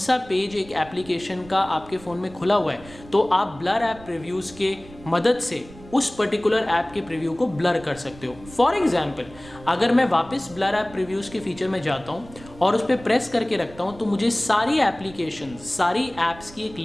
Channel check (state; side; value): noise; right; rumble, 20 dB below the sound